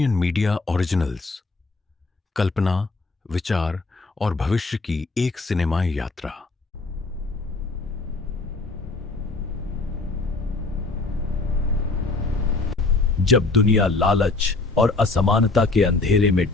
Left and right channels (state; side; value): quieter; right; 3.5 dB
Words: मीडिया ओरिजिनल्स, कल्पना, विचार और भविष्य की एक सिनेमाई यात्रा। जब दुनिया लालच और असमानता के अंधेरे में